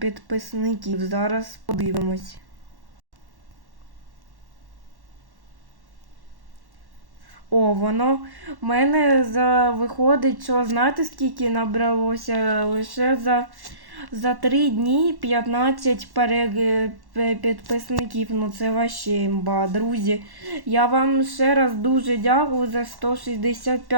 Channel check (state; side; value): late; left; 1.1 ms